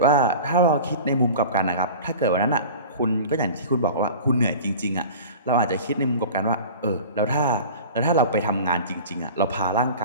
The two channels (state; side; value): inverted; both; correlation -0.38